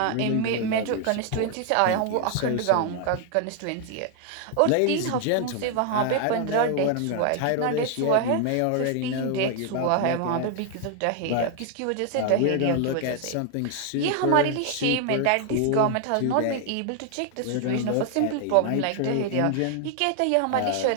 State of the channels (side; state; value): both; different; correlation 0.00